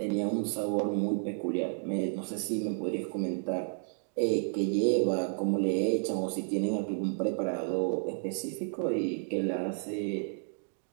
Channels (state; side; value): silent; left; digital silence